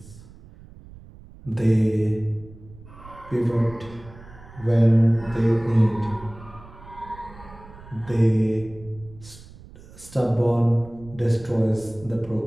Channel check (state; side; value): noise; right; rumble, 20 dB below the sound